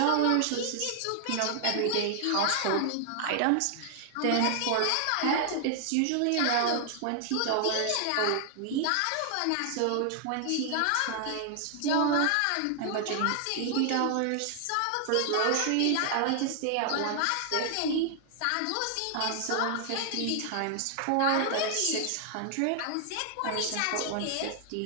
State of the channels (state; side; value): different; both; correlation 0.00